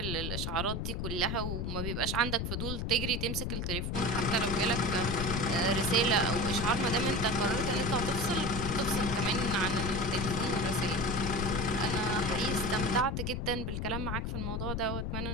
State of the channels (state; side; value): noise; left; rumble, 2 dB below the sound